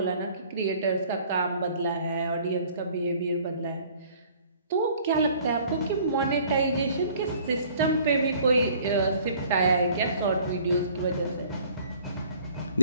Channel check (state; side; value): inverted; both; correlation -0.55